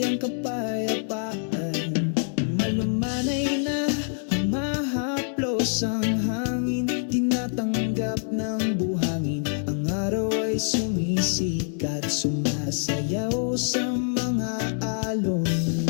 kapayapaan. Malumanay na humahaplos ang hangin, tinatanggap ng buhangin. Ang araw ay sumisikat, sumasayaw sa mga alon.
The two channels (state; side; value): silent; right; digital silence